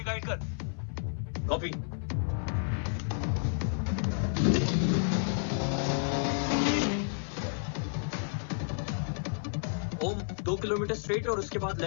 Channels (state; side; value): silent; right; 57 dB below the other